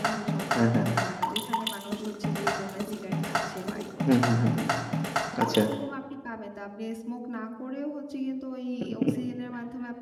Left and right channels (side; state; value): both; identical; correlation 1.00